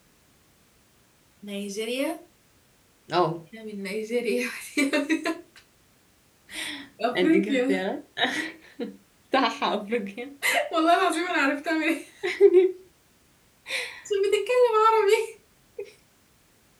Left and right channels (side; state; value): both; identical; correlation 1.00